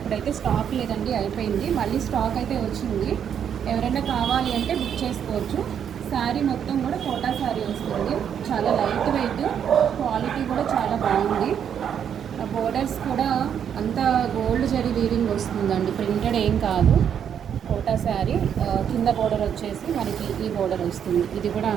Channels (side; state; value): left; quieter; 8.5 dB